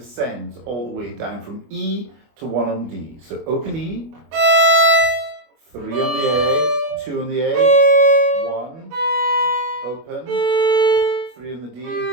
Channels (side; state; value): left; late; 25 ms